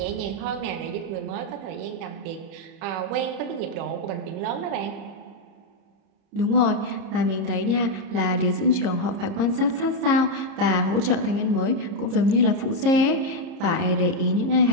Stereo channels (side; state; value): left; late; 30 ms